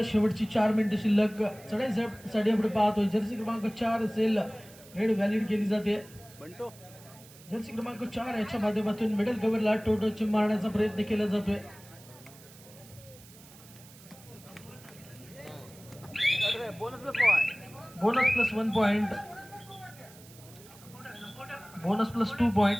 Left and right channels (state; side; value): noise; right; hiss, 22 dB below the sound